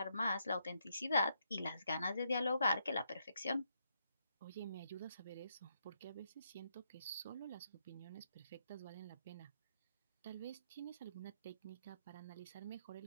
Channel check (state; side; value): inverted; both; correlation -0.77